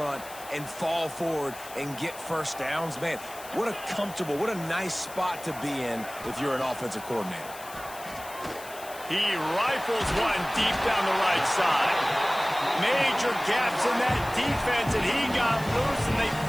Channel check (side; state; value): left; noise; hiss, 16 dB below the sound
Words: and fall forward and get first downs. Man, what a comfortable, what a nice spot to be in if you're an offensive coordinator. He rifles one deep down the right side. Major gaps in that defense, and he got loose, and they